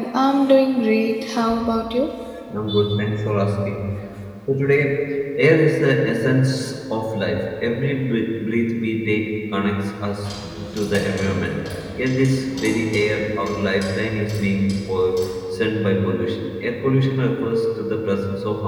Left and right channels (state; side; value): identical; both; correlation 1.00